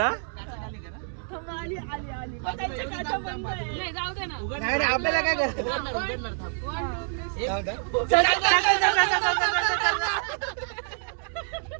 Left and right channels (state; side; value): silent; left; 60 dB below the other